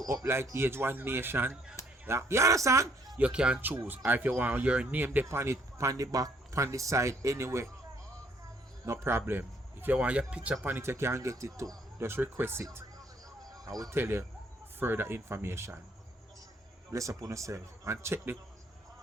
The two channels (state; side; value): normal; both; correlation 0.66